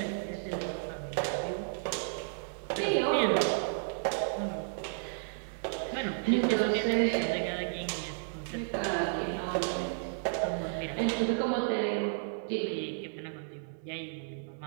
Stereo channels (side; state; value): left; silent; digital silence